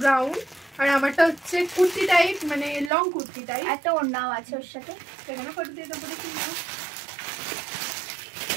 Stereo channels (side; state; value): left; drops out; at 2.9 s